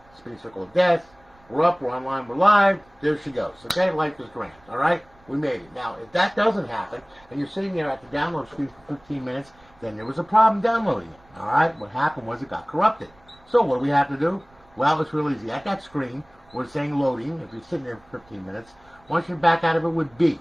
Spinning circle of death. We're up, we're online, we're live. There she goes. Okay, life is grand. Alright? We made it. Now, if that doesn't happen, and you're sitting there at the download screen for 15 minutes, then there was a problem downloading it. Alright? What happened was it got corrupted. So, what do we have to do? Well, it's real easy. At that screen, we're saying loading. If you're sitting there for 15 minutes, once you're back out of it with B.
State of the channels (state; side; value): noise; right; rumble, 29 dB below the sound